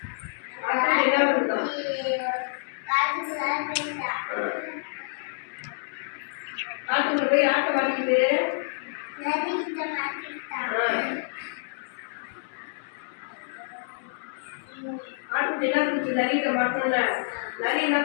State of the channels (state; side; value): silent; right; 60 dB below the other